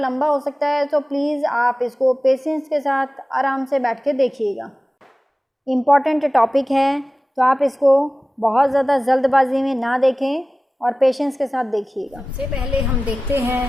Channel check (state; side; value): normal; both; correlation 0.96